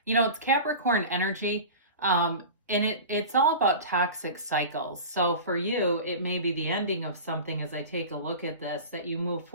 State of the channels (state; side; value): inverted; both; correlation -0.33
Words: You know, it's Capricorn energy, and it's all about toxic cycles. So for you, it may be the ending of something as I take a look at this, that you move